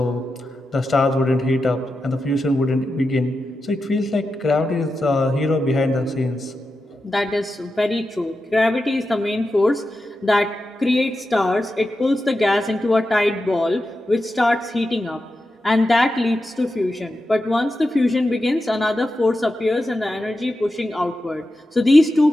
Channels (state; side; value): normal; both; correlation 0.90